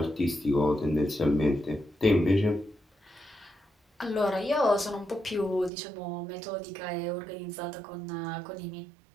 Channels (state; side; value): drops out; left; at 5.7 s